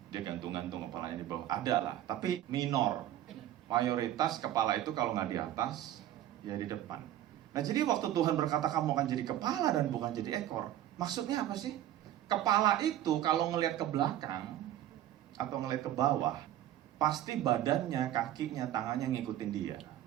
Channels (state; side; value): quieter; left; 12.4 dB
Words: dia gantung-gantung kepalanya di bawah. Ada lah, tapi minor. Mayoritas kepala itu kalau nggak di atas, ya di depan. Nah, jadi waktu Tuhan berkata kamu akan jadi kepala dan bukan jadi ekor, maksudnya apa sih? Kepala itu kalau ngelihat ke belakang atau ngelihat ke bawah, pasti badannya, kakinya, tangannya ngikutin dia.